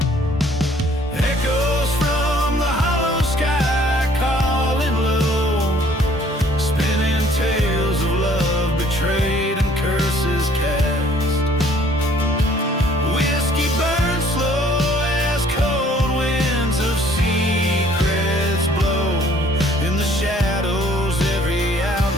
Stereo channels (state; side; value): normal; both; correlation 0.59